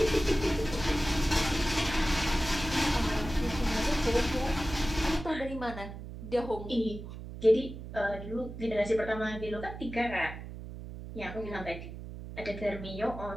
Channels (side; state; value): right; noise; hum, 10 dB below the sound